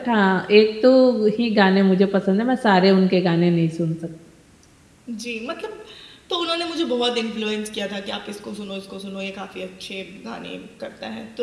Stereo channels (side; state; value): both; identical; correlation 1.00